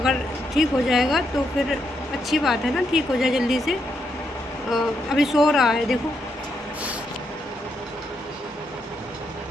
ठीक हो जाएगा तो फिर अच्छी बात है ना, ठीक हो जाए जल्दी से। अभी सो रहा है, देखो।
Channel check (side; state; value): both; normal; correlation 0.79